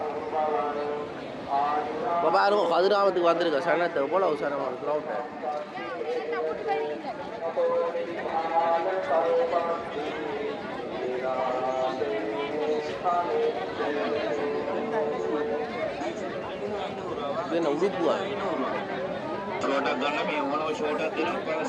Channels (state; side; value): identical; both; correlation 1.00